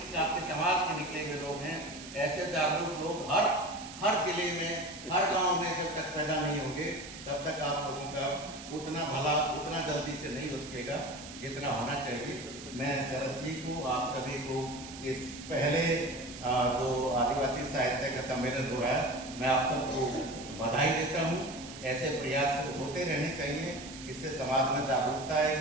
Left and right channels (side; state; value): right; noise; hiss, 13 dB below the sound